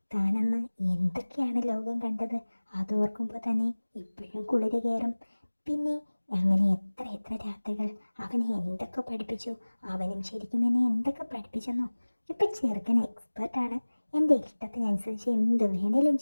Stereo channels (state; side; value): inverted; both; correlation -1.00